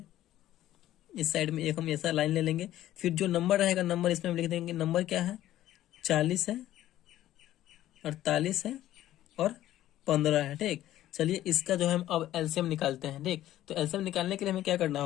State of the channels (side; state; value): right; quieter; 13.6 dB